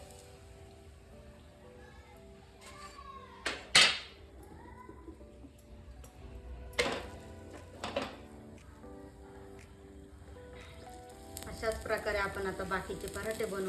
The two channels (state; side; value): identical; both; correlation 1.00